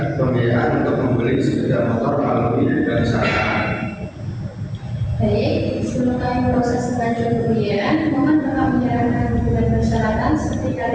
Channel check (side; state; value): both; identical; correlation 1.00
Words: pembiayaan untuk membeli sepeda motor melalui bank syariah. Baik, sebelum kami proses pengajuan pembiayaan, mohon Bapak menyerahkan dokumen persyaratan seperti